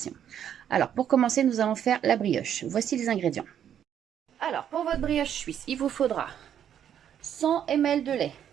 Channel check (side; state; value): left; quieter; 9.4 dB